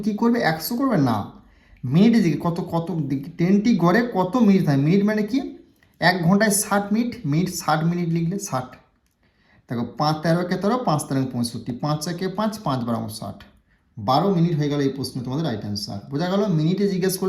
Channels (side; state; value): both; identical; correlation 1.00